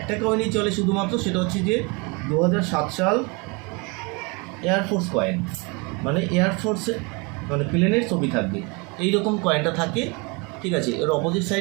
কয়েনই চলে শুধুমাত্র, সেটা হচ্ছে যে 2007 সাল এয়ারফোর্স কয়েন, মানে এয়ারফোর্সে মানে প্লেনের ছবি থাকবে, এইরকম কয়েনটা থাকে, ঠিক আছে। এর অপোজিট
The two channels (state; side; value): quieter; left; 29.6 dB